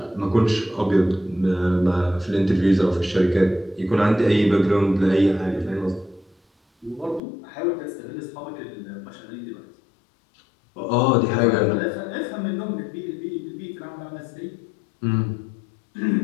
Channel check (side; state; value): right; drops out; at 7.2 s